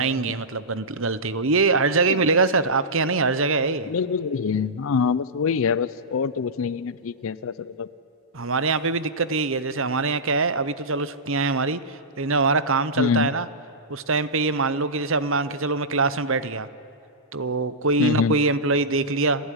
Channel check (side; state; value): both; normal; correlation -0.14